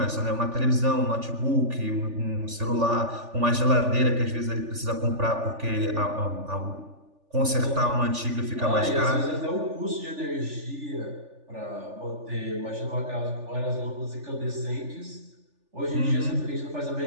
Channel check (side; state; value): left; late; 3.4 ms